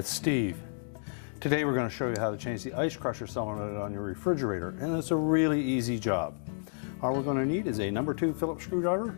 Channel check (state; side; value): silent; right; digital silence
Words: Steve. Today we're going to show you how to change the ice crusher solenoid on your refrigerator, and it's a really easy job. All we're going to need is a number 2 Phillips